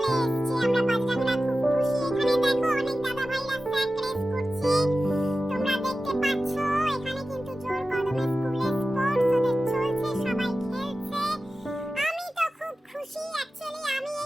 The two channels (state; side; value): normal; both; correlation 0.94